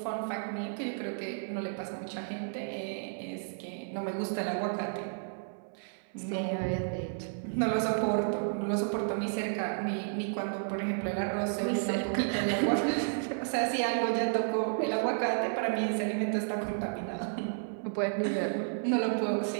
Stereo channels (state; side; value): silent; left; 56 dB below the other